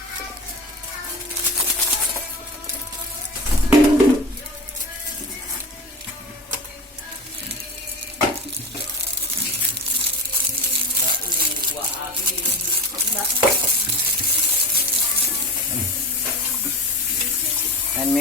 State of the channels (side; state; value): both; normal; correlation 0.28